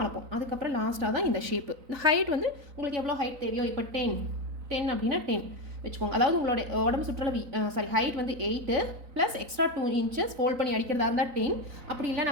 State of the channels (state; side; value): late; left; 3.9 ms